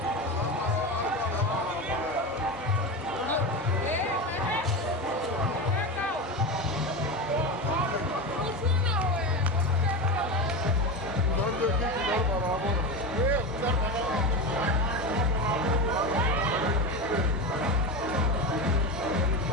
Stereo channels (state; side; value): normal; both; correlation 0.21